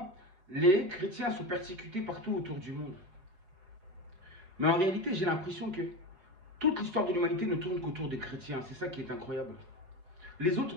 les chrétiens sont persécutés partout autour du monde. Mais en réalité, j'ai l'impression que toute l'histoire de l'humanité ne tourne qu'autour des chrétiens. C'est ça qui est incroyable. Les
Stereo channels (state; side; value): late; left; 5.3 ms